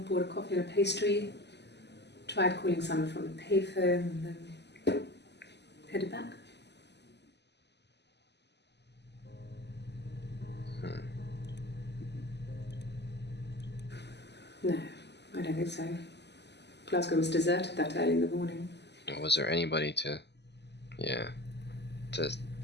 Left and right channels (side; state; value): right; late; 0.50 ms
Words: a coffee and a pastry, tried calling someone from the payphone, and then headed back. No, I don't think so. Glasgow was deserted that early in the morning. Was there anybody to